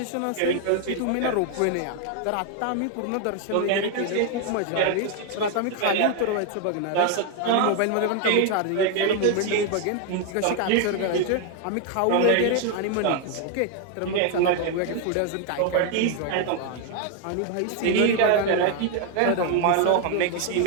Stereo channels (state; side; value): different; both; correlation 0.01